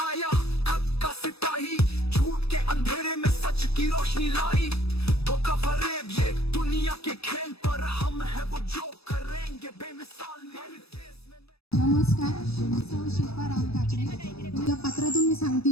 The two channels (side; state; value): right; late; 0.78 ms